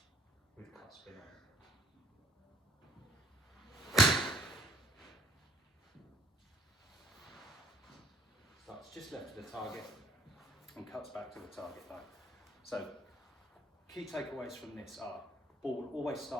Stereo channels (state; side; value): normal; both; correlation 0.60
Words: with cut spin on. Starts just left of the target and cuts back to the target line. So key takeaways from this are: ball will always